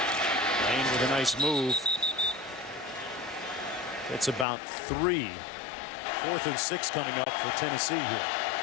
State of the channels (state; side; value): drops out; right; at 4.5 s